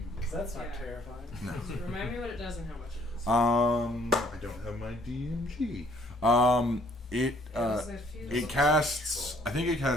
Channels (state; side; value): normal; both; correlation 0.62